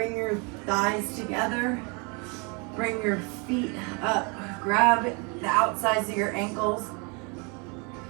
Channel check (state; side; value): quieter; left; 32.2 dB